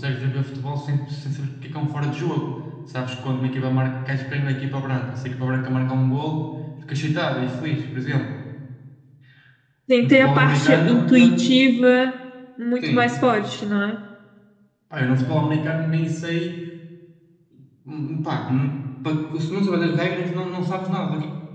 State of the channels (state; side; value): identical; both; correlation 1.00